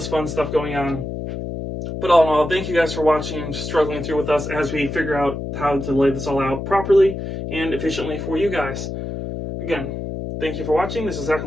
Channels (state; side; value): noise; left; hum, 6 dB below the sound